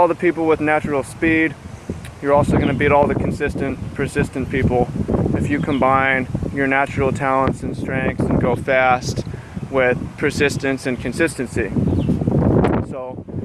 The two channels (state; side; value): identical; both; correlation 1.00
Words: the people with natural speed. You're also going to beat all the consistent, persistent people if you combine your natural talents and strengths and go fast with persistence and consistency. So